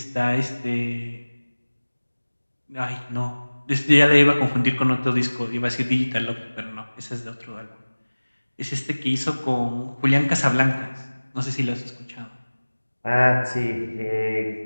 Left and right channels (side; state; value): both; inverted; correlation -1.00